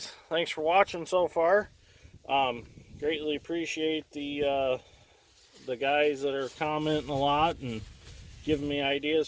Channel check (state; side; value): identical; both; correlation 1.00